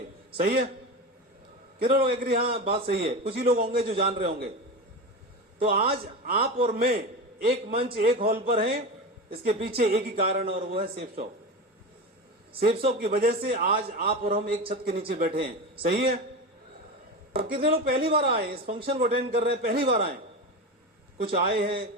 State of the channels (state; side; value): normal; both; correlation 0.23